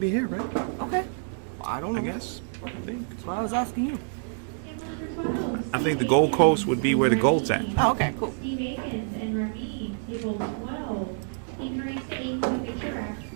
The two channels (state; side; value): silent; left; 60 dB below the other